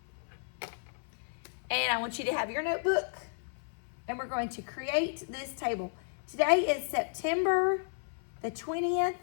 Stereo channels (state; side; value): silent; right; 56 dB below the other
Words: and I want you to have your notebook, and we're going to create this table. Today is September the 20th,